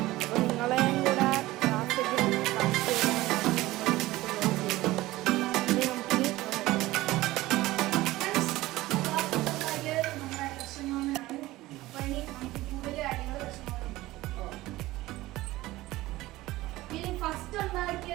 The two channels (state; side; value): quieter; left; 17.9 dB